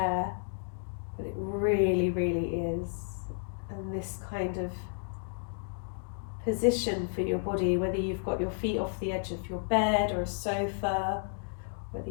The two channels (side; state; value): right; silent; digital silence